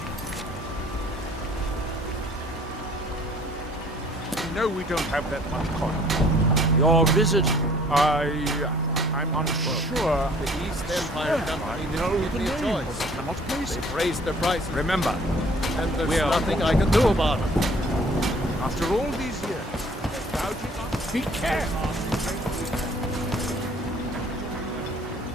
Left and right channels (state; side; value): normal; both; correlation 0.55